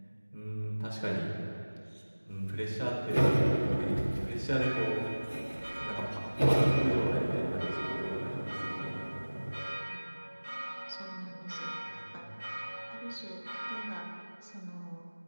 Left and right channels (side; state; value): both; inverted; correlation -1.00